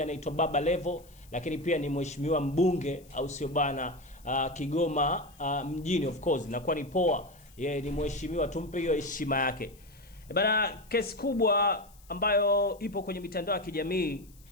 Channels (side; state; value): left; noise; hiss, 27 dB below the sound